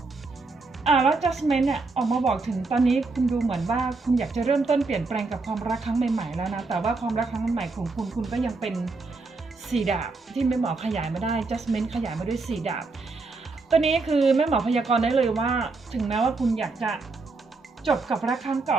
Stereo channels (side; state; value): left; quieter; 3.8 dB